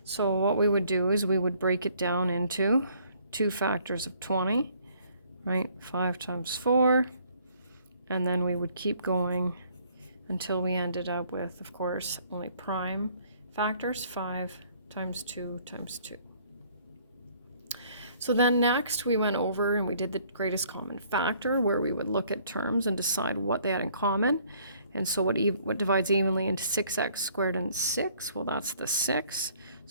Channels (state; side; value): inverted; both; correlation -0.61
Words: So what we would do is we would break it down into two factors of 20, right? 5 times 4, and then we would keep going until we ended up with, of course, only prime factors, 5 times 2 times 2. So then next we went over and we did the greatest common factor, where we would look at terms and decide what they had in common. And so what divides evenly into 6x squared and 6? Well, that's the 6.